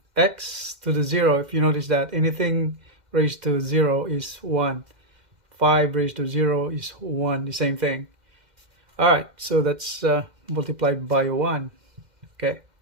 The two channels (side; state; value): left; late; 2.1 ms